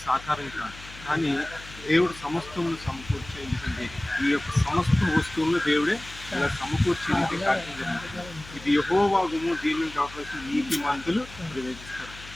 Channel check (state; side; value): noise; left; hum, 17 dB below the sound